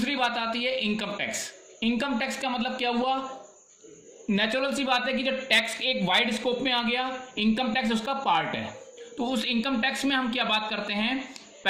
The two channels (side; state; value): both; identical; correlation 1.00